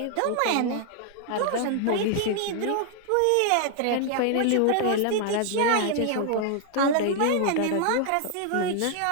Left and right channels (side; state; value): both; different; correlation 0.00